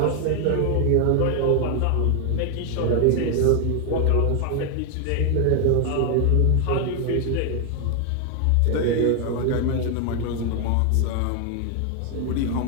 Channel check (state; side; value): different; both; correlation 0.00